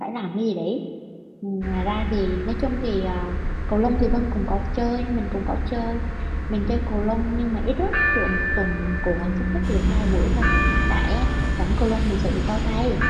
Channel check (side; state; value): both; identical; correlation 1.00